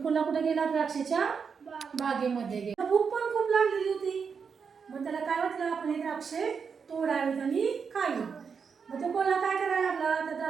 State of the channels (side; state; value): left; quieter; 6.0 dB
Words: कोल्हा कुठे गेला? द्राक्षाच्या बागेमध्ये गेला. भूक पण खूप लागलेली होती. मग त्याला काय वाटलं, आपण हे द्राक्षे तोडावेत आणि खावीत. मग तो कोल्हा काय करायला लागला? त्या